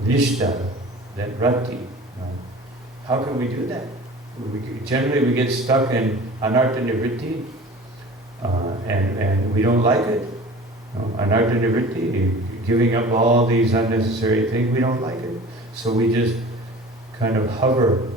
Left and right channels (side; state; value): both; normal; correlation 0.41